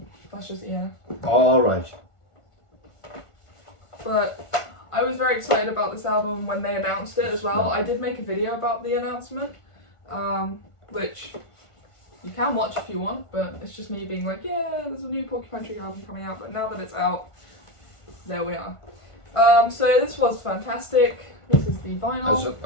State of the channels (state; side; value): late; right; 1.4 ms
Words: That's just All right. But I was very excited about this album when they announced it as well. I did make a video about the announcement, which you can watch if you want, but it's just me being like, yeah, there's a new Porcupine Tree album coming out, but now that it's out, there we are. So this was fantastic. This is the vinyl.